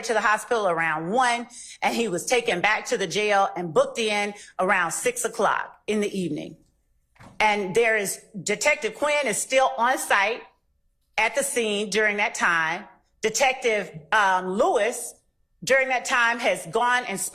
to the hospital around 1, and he was taken back to the jail and booked in around 6 o'clock in the evening. And there is Detective Quinn is still on site at the scene during that time. Detective Lewis during that time has gone and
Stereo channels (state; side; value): identical; both; correlation 1.00